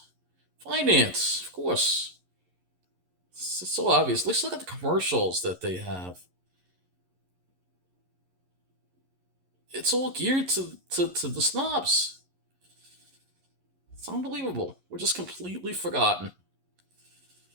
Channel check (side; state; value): left; late; 11 ms